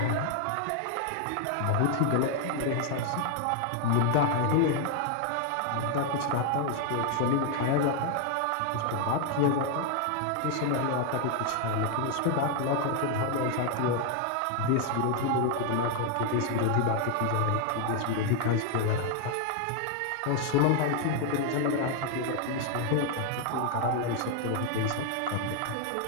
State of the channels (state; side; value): different; both; correlation 0.00